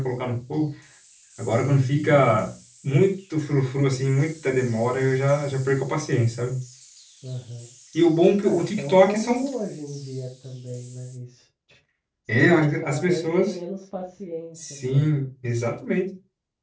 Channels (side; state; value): both; identical; correlation 1.00